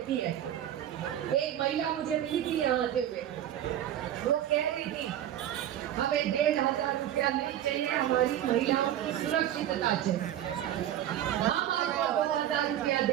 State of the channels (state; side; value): quieter; left; 11.5 dB